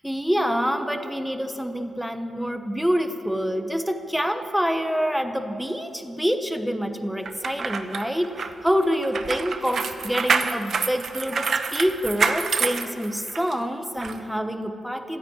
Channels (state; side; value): normal; both; correlation 0.94